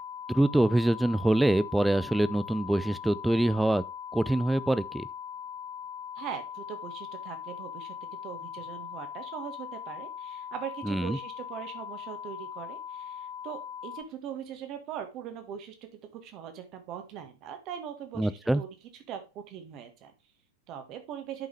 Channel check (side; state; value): both; normal; correlation 0.89